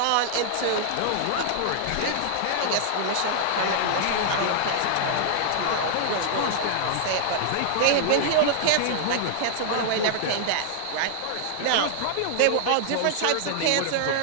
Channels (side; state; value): both; different; correlation -0.01